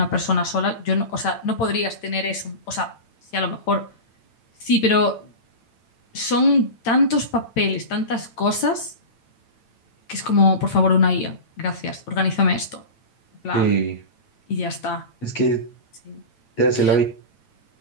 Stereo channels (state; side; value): late; right; 9.0 ms